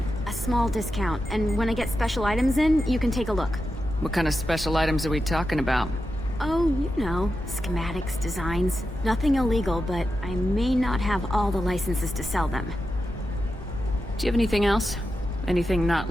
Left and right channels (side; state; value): both; normal; correlation 0.89